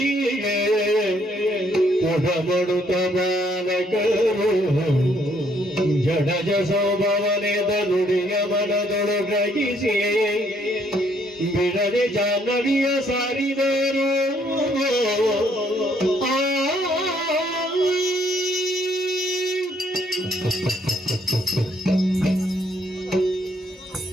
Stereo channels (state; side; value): normal; both; correlation 0.68